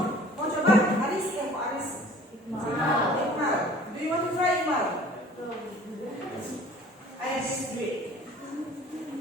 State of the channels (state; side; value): normal; both; correlation 0.49